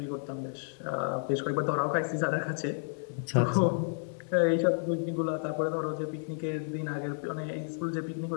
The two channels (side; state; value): right; silent; 57 dB below the other